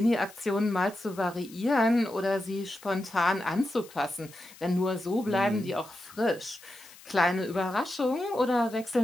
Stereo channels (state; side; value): noise; left; hiss, 21 dB below the sound